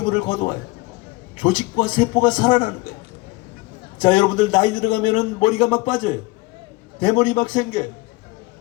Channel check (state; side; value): quieter; right; 22.4 dB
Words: 걷어와요. 조직과 세포가 살아나는 거예요. 자, 여러분들 나이 들어가면은 머리가 막 빠져요. 대머리 막 생겨요.